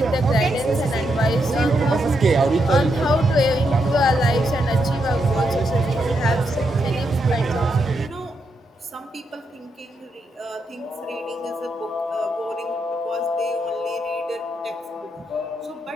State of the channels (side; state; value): both; normal; correlation 0.81